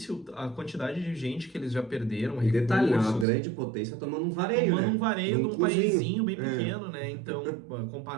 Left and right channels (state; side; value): drops out; left; at 3.2 s